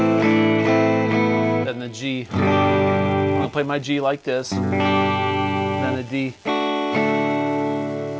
the G. I'm going to play my G like this. Then the D.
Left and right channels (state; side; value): identical; both; correlation 1.00